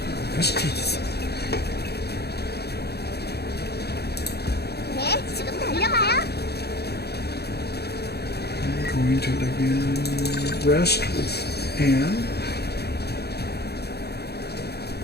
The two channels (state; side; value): late; right; 0.47 ms